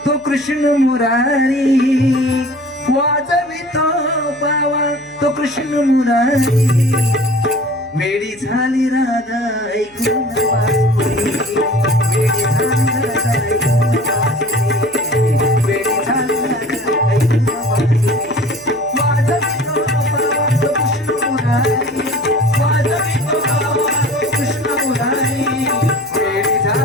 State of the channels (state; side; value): noise; left; hum, 30 dB below the sound